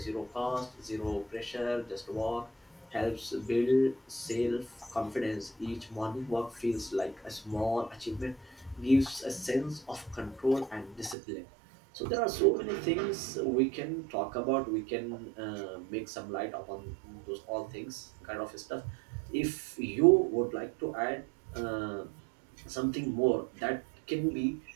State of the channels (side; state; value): left; drops out; at 11.2 s